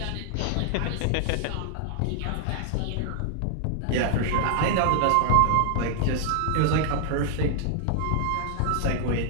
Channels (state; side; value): different; both; correlation 0.00